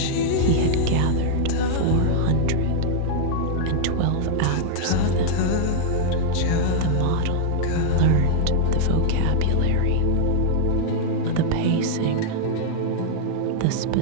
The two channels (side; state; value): both; different; correlation -0.01